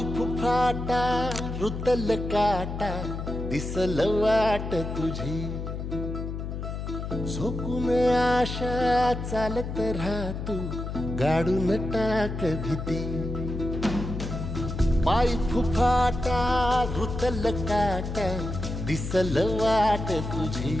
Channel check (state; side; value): noise; left; hum, 5 dB below the sound